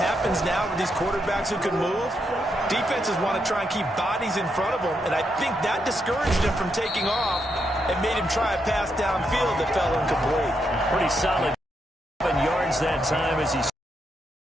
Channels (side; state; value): both; normal; correlation 0.81